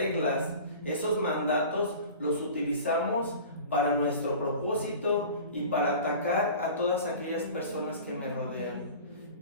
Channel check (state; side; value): inverted; both; correlation -0.39